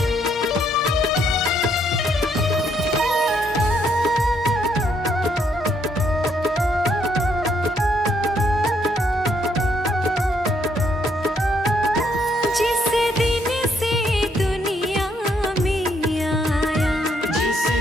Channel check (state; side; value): normal; both; correlation 0.72